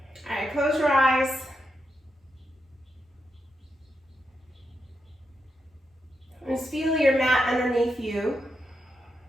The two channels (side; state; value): both; normal; correlation 0.85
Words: All right, close your eyes. Just feel your mat underneath you.